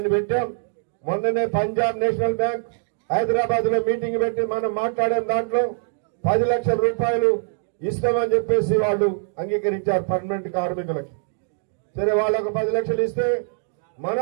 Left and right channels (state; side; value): silent; left; digital silence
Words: పెట్టాం. మొన్ననే పంజాబ్ నేషనల్ బ్యాంక్ హైదరాబాద్ లో మీటింగ్ పెట్టి మనం మాట్లాడాం. దాంట్లో 10 లక్షల రూపాయలు ఇస్తామని చెప్పేసి వాళ్ళు అంగీకరించారు పర్మనెంట్ కార్మికులకి. సరే వాళ్ళకు 10 లక్షలు ఇస్తే